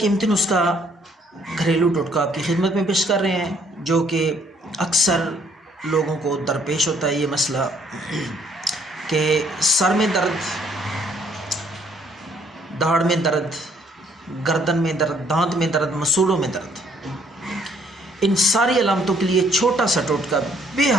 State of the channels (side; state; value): both; normal; correlation 0.64